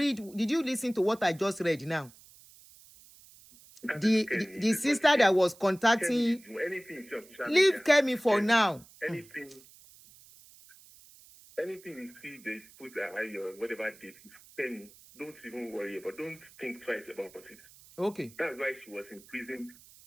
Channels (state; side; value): noise; right; hiss, 23 dB below the sound